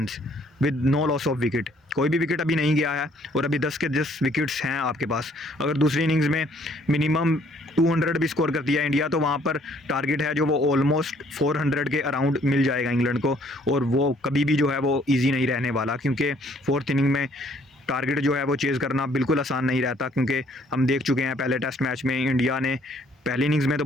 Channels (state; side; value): normal; both; correlation 0.63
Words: with no loss of wicket. कोई भी विकेट अभी नहीं गया है, और अभी 10 के 10 विकेट्स हैं आपके पास। अगर दूसरी इनिंग्स में मिनिमम 200 भी स्कोर करती है इंडिया, तो वहाँ पर टारगेट है जो वो ऑलमोस्ट 400 के अराउंड मिल जाएगा इंग्लैंड को, और वो कभी भी जो है वो ईजी नहीं रहने वाला, क्योंकि 4th इनिंग में टारगेट जो है वो चेज़ करना बिल्कुल आसान नहीं रहता। क्योंकि हम देख चुके हैं पहले टेस्ट मैच में इंडिया ने पहली इनिंग्स में तो